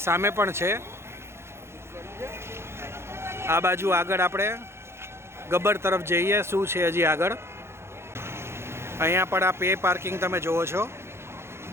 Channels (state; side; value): late; left; 0.12 ms